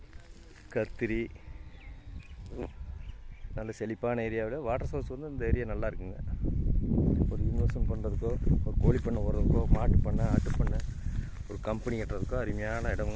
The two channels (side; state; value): both; identical; correlation 1.00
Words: கத்திரி, நல்ல செழிப்பான ஏரியாவில் வாட்டர் சோர்ஸ் வந்து இந்த ஏரியா நல்லா இருக்குங்க. ஒரு இன்வெஸ்ட்மெண்ட் பண்ணுறதுக்கோ, ஒரு கோழி பண்ணை ஓடுறதுக்கோ, மாட்டு பண்ணை, ஆட்டு பண்ணை, ஒரு கம்பெனி கட்டுறதுக்கோ அருமையான